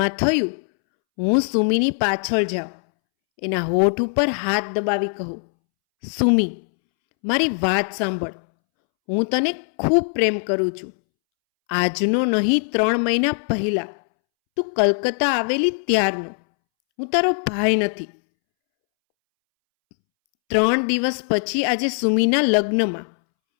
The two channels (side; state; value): right; silent; 65 dB below the other